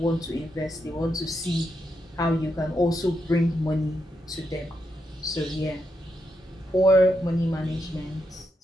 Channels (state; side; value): normal; both; correlation 0.82